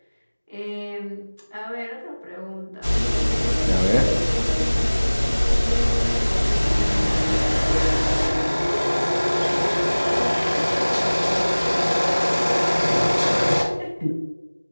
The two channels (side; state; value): both; inverted; correlation -1.00